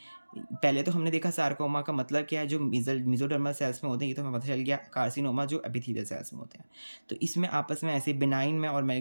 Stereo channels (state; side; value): inverted; both; correlation -1.00